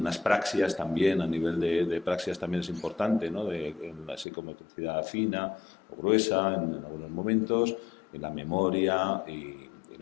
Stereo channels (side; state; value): right; drops out; at 4.2 s